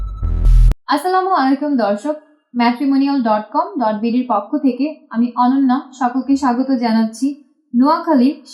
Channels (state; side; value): identical; both; correlation 1.00